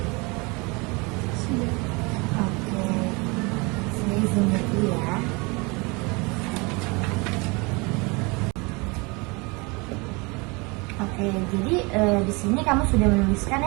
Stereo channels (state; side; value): quieter; left; 27.9 dB